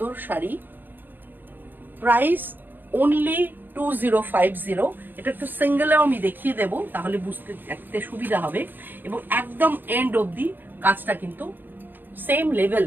শাড়ি। Price only 2050। এটা একটু সিঙ্গেলেও আমি দেখিয়ে দেবো, তাহলে বুঝতে দেখতে সুবিধা হবে। এবং একদম এন্ড অবধি কাজটা কিন্তু সেম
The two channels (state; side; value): late; left; 0.092 ms